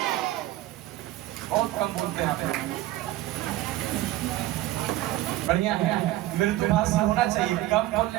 बहुत कम बोलते हैं आप, बढ़िया है, मृदुभाषी होना चाहिए, कम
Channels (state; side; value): quieter; left; 15.7 dB